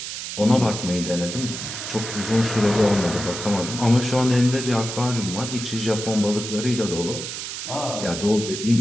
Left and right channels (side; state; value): right; noise; hiss, 7 dB below the sound